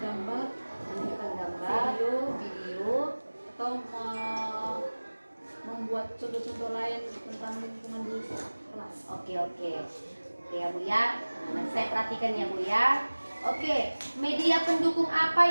gambar, video atau membuat contoh-contoh lain tentang lingkungan di kelas. Oke ya Bu ya. Nanti saya perhatikan ya Bu ya. Oke, media pendukung apa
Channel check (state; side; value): inverted; both; correlation -1.00